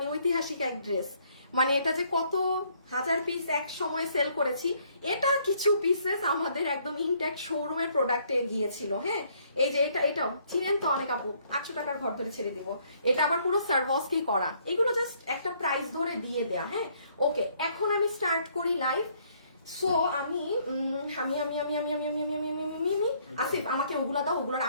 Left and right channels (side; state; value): both; inverted; correlation -0.66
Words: ঐতিহাসিক এক ড্রেস, মানে এটা যে কত হাজার পিস এক সময় সেল করেছি, এটা কিছু পিসেস আমাদের একদম ইনট্যাক্ট শোরুমের প্রোডাক্টে গিয়েছিল। হ্যাঁ, এই যে এটাও চিনেন তো অনেক আপু, 800 টাকার ঘর ধরে ছেড়ে দিব। এটা আবার পুরো সার্ভাসকেই করা, এগুলো জাস্ট একটা প্রাইস ধরে দিয়ে দেয়া। হ্যাঁ, ওকে, এখন আমি স্টার্ট করি লাইভ। সো আমি আসিফ আমাকে ওগুলা দাও, ওগুলোর